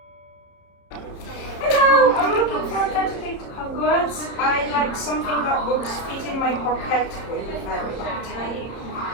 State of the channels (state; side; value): late; right; 30 ms